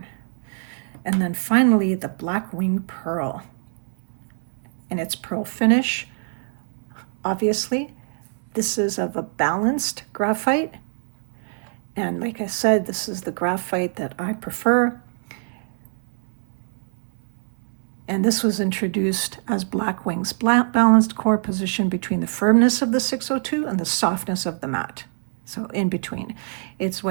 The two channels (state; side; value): silent; left; digital silence